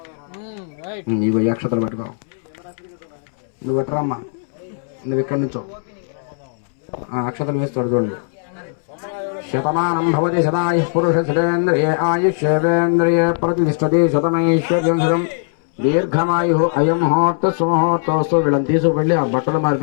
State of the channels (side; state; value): right; silent; 67 dB below the other